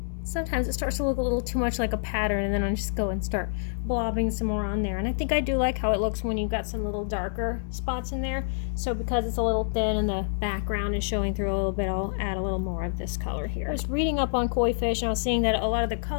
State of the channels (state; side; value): silent; right; digital silence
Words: Sometimes it starts to look a little too much like a pattern, and then I just go and start blobbing some more on there. And I think I do like how it looks when you've got some little darker spots in there. So because it's a little thin and the background is showing through a little bit, I'll add a little more of this color here. I was reading up on koi fish, and I was seeing that a lot of the